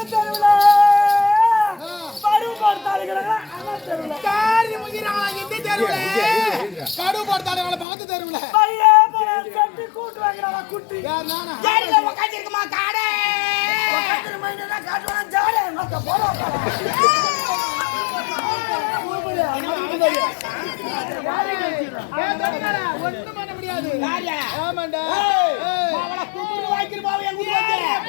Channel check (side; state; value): right; drops out; at 7.9 s